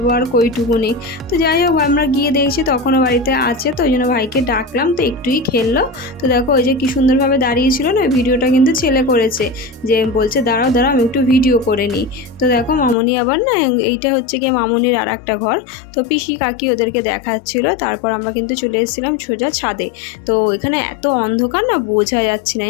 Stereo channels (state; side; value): drops out; right; at 13.0 s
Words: আর কইটুকুনি। তো যাই হোক আমরা গিয়ে দেখছি তখনও বাড়িতে আছে, তো ওই জন্য ভাইকে ডাকলাম, তো একটুই খেললো। তো দেখো ওই যে কি সুন্দরভাবে দাঁড়িয়েছিল না, ভিডিওটা কিন্তু ছেলে করেছে, যে বলছে দাঁড়াও দাঁড়াও আমি একটু ভিডিও করে নিই। তো দেখো মামনি আবার না, এইটা হচ্ছে গিয়ে মামনির আর একটা ঘর। তো পিসি কাকি ওদেরকে দেখাচ্ছিল। তারপর আমরা কিন্তু চলে এসেছিলাম সোজা ছাদে। তো এখানে এত অন্ধকার না, বোঝা যাচ্ছে না,